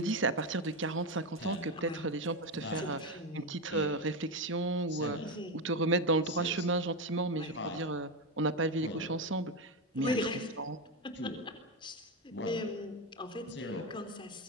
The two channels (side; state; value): both; normal; correlation 0.12